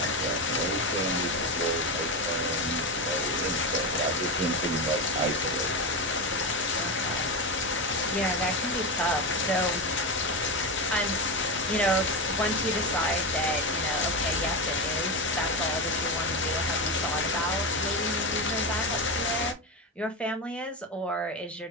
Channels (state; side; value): normal; both; correlation 0.16